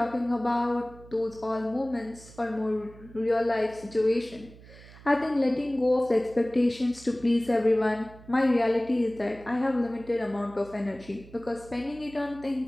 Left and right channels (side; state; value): right; noise; hum, 20 dB below the sound